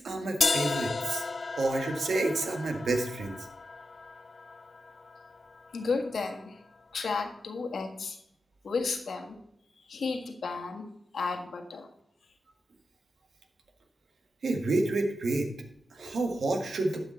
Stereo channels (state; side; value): normal; both; correlation 0.88